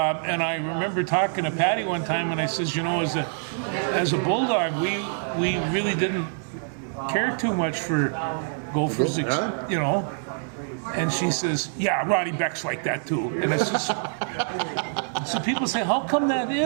remember talking to Patty one time, and I says, as a Bulldog, we really didn't care too much for Gophers, And she says, yeah, Ronnie Beck's like that too. And it's just, so people say, how come that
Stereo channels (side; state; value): left; silent; digital silence